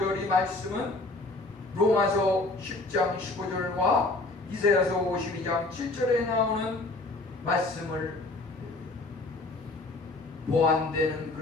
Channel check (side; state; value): right; quieter; 3.0 dB